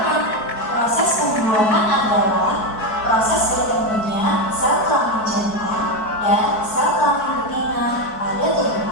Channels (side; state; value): right; late; 4.6 ms